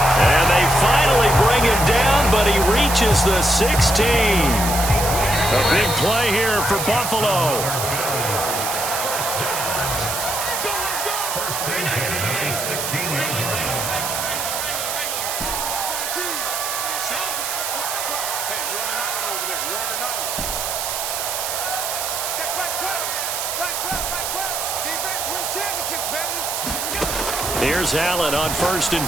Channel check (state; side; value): noise; right; hiss, 3 dB below the sound